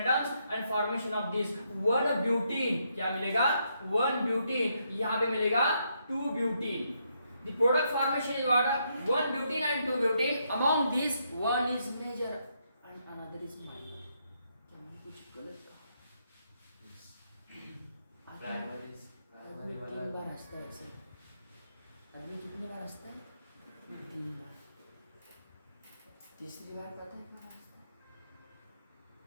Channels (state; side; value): inverted; both; correlation -0.77